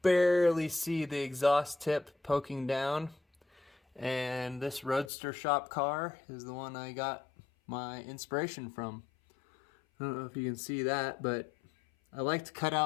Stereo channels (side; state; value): right; drops out; at 5.1 s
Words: barely see the exhaust tip poking down. And this Roadster shop car is the one I got my inspiration from. I don't know if you can see that, but I like to cut